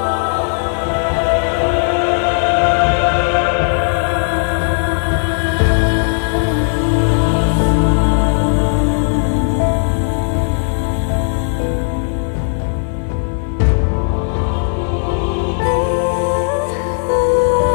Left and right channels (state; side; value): silent; right; 59 dB below the other